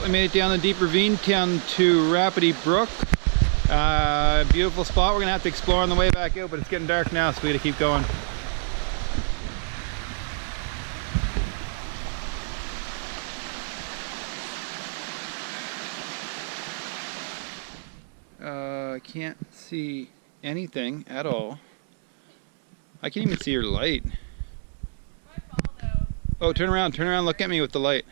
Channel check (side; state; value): left; silent; 61 dB below the other